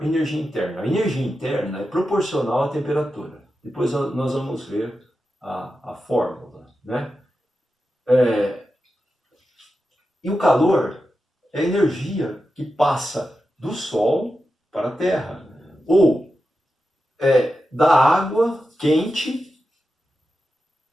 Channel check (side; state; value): both; normal; correlation 0.90